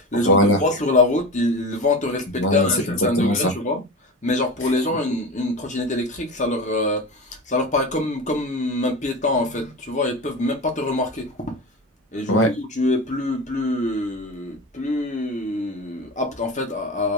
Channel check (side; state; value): both; normal; correlation 0.27